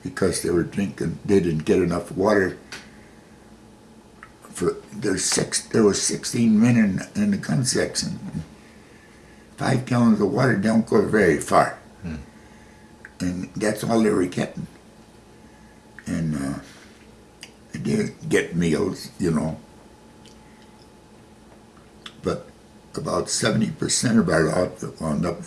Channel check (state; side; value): identical; both; correlation 1.00